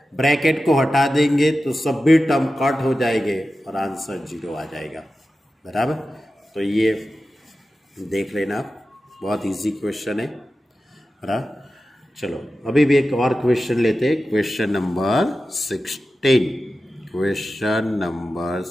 ब्रैकेट को हटा देंगे तो सभी टर्म कट हो जाएंगे और आंसर 0 आ जाएगा, बराबर। तो ये देख लेना, बहुत इजी क्वेश्चन है। चलो अभी भी एक और क्वेश्चन लेते हैं, question number 16। Question number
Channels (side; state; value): both; normal; correlation 0.93